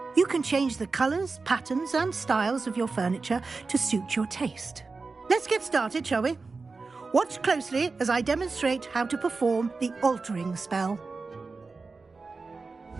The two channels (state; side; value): quieter; left; 4.1 dB